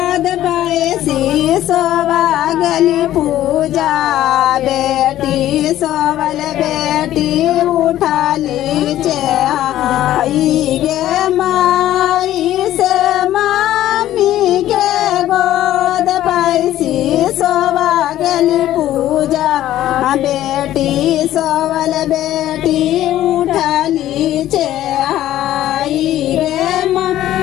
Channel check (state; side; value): quieter; right; 13.2 dB